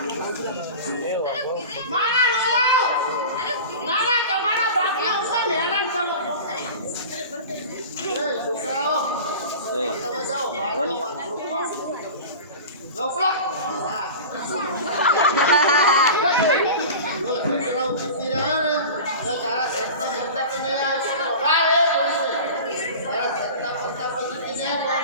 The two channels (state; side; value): inverted; both; correlation -0.34